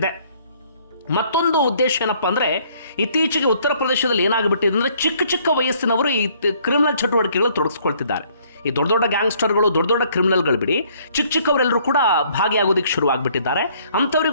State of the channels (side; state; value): both; inverted; correlation -0.63